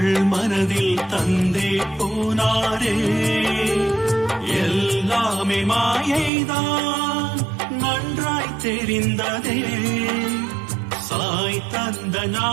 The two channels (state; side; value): drops out; left; at 6.3 s